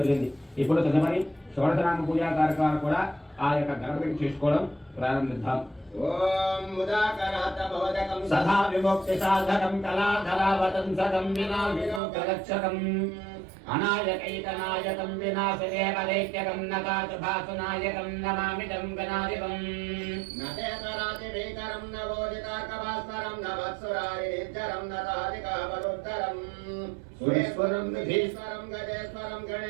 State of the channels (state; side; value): drops out; left; at 12.0 s